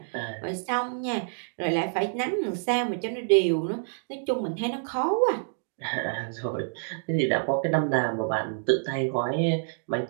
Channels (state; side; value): silent; left; digital silence